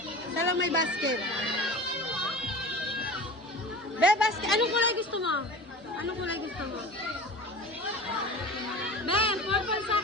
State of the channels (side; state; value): both; normal; correlation 0.35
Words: Isa lang may basket. Be, basket. Anong kulay gusto mo? Anong kulay gusto mo? Be, purple sa